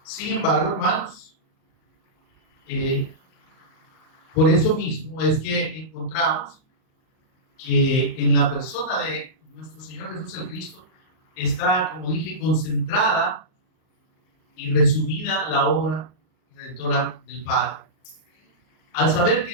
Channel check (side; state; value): right; late; 38 ms